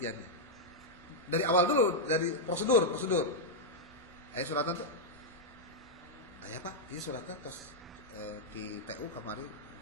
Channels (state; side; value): normal; both; correlation -0.04